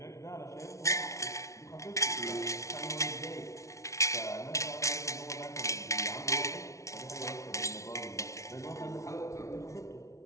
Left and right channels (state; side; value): late; right; 0.14 ms